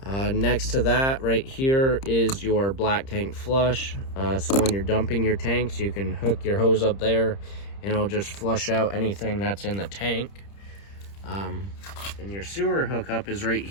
Next to that right here is your black tank flush. So when you're dumping your tanks, you can hook your hose up there and it'll just flush out anything that's in the tank. And your sewer hookup is right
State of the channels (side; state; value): right; late; 30 ms